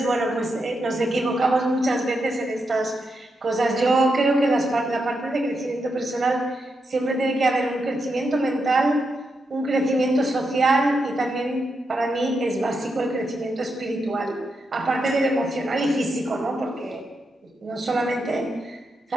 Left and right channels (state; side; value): normal; both; correlation 0.84